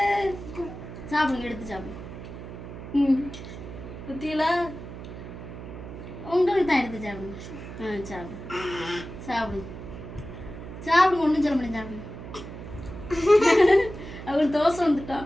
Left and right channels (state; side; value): noise; right; hum, 11 dB below the sound